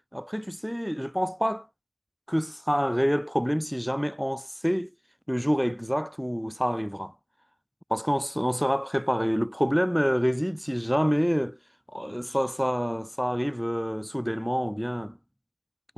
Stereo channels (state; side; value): identical; both; correlation 1.00